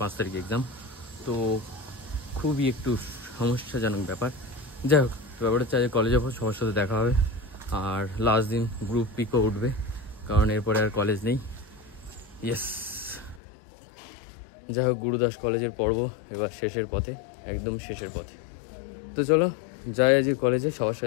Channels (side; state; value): right; drops out; at 13.4 s